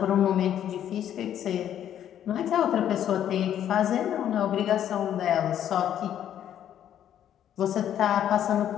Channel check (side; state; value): right; quieter; 10.4 dB